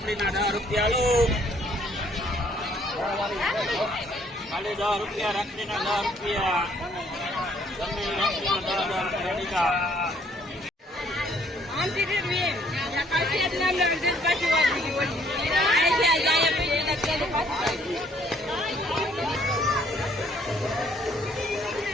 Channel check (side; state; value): both; normal; correlation 0.63